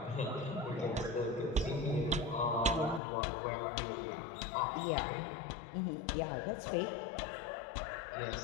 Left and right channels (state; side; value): drops out; right; at 3.0 s